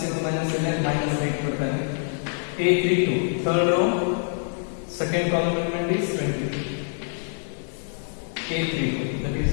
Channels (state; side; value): silent; right; digital silence